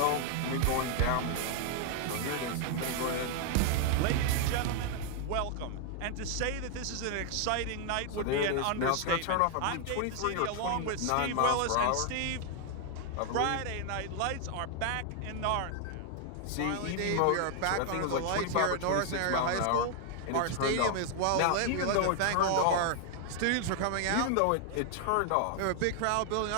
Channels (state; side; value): different; both; correlation 0.00